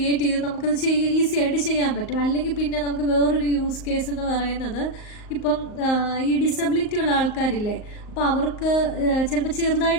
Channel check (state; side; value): late; right; 38 ms